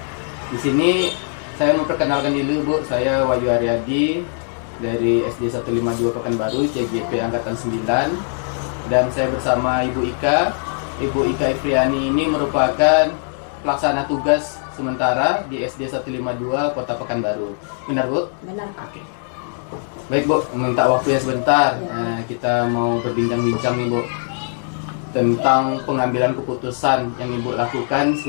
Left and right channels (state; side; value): silent; right; 63 dB below the other